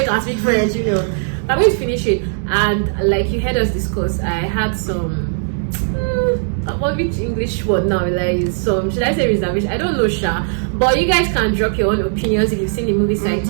can speak French, you know. I'm going to finish it. And like you heard us discuss, I had some which English word now, like some, should I say reservation? I don't know, Sha. But you guys can drop your own opinions if you've seen the movie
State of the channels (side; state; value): left; silent; digital silence